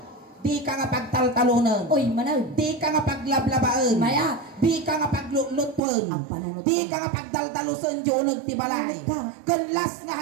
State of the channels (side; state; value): left; drops out; at 5.8 s